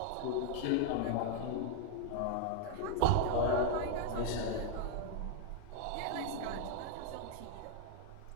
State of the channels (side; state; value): both; different; correlation 0.01